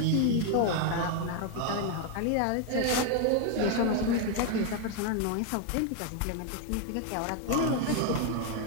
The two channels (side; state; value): both; different; correlation 0.01